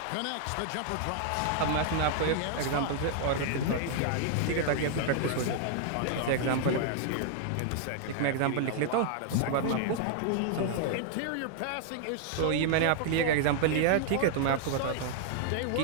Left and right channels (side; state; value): both; different; correlation -0.01